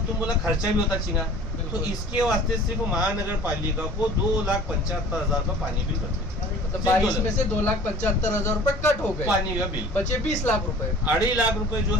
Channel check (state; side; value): normal; both; correlation 0.45